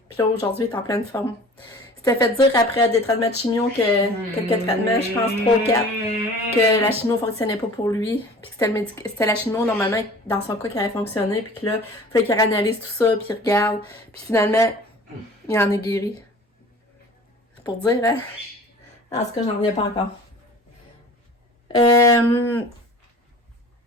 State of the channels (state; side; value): normal; both; correlation 0.44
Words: Puis là, aujourd'hui, il est en pleine forme. C'était fait dire après des traitements de chimio que quelques traitements, je pense 3 ou 4, que la chimio fonctionnait pas pour lui. Puis que c'était la chimio, normalement, dans son cas, qui avait fonctionné. Puis que là, il fallait qu'il analyse tout ça, puis il regarde. Puis finalement, il en est guéri. C'est pour dire, hein? En tout cas, j'en reviens pas encore. Fait